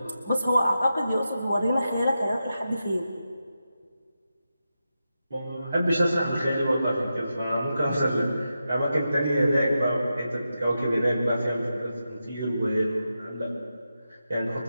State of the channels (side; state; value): both; inverted; correlation -0.89